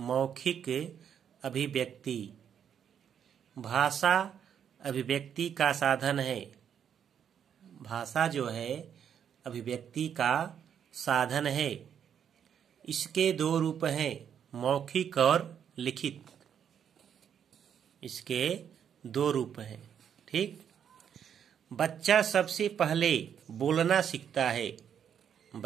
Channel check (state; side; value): quieter; left; 8.4 dB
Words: अभिव्यक्ति भाषा अभिव्यक्ति का साधन है। भाषा जो है अभिव्यक्ति का साधन है। इसके दो रूप हैं, मौखिक और लिखित। इसके दो रूप हैं। ठीक। बच्चा सबसे पहले बोलना सीखता है।